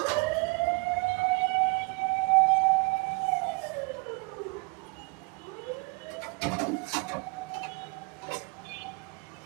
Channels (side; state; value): left; quieter; 28.8 dB